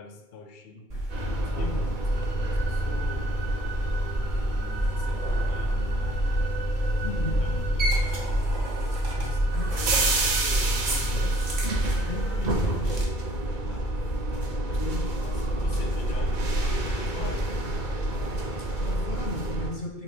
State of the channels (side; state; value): right; late; 2.3 ms